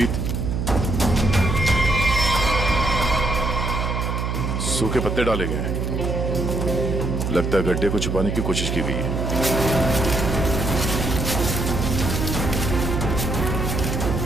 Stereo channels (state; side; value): noise; right; hum, 1 dB below the sound